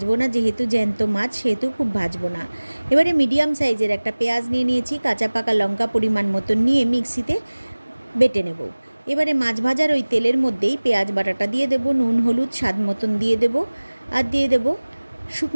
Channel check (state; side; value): inverted; both; correlation -1.00